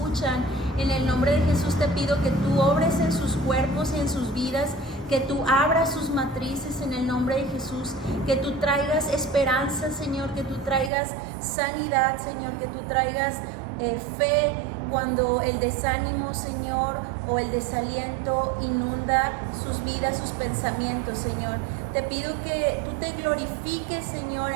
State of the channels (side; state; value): left; drops out; at 10.9 s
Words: En el nombre de Jesús te pido que tú obres en sus cuerpos y en sus vidas, que tú abras sus matrices en el nombre de Jesús, que tú traigas esperanza, Señor, que tú traigas sanidad, Señor, que tú traigas fe cuando el desánimo, Señor, o el desaliento inunda sus vidas, sus pensamientos, Señor. Te pido que tú te glorifiques, Señor,